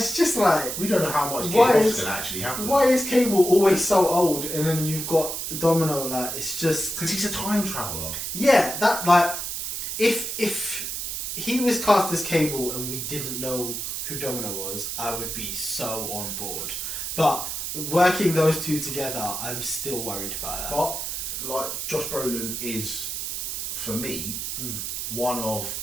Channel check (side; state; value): right; noise; hiss, 4 dB below the sound